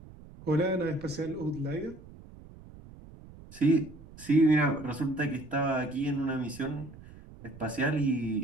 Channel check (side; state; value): right; noise; rumble, 19 dB below the sound